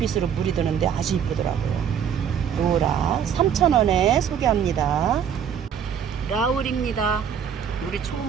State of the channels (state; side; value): quieter; left; 8.1 dB